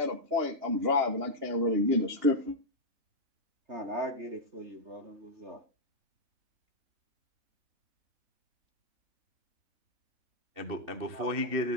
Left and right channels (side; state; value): left; late; 2.7 ms